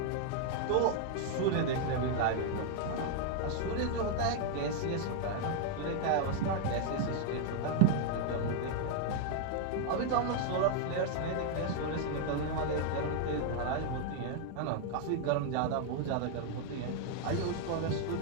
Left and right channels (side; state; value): both; different; correlation 0.00